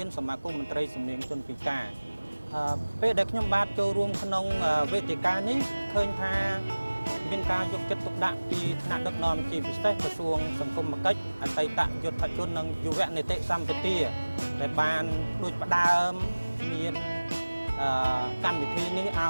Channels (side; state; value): both; inverted; correlation -1.00